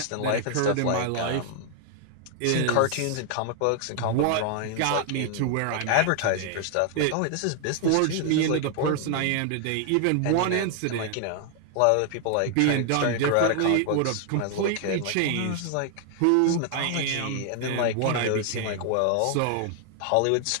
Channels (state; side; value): different; both; correlation 0.00